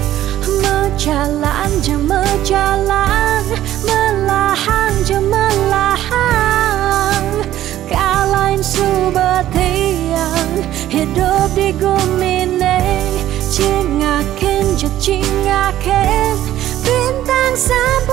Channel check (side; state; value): left; quieter; 13.2 dB